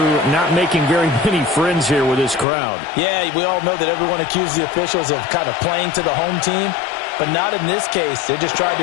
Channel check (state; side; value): drops out; right; at 2.5 s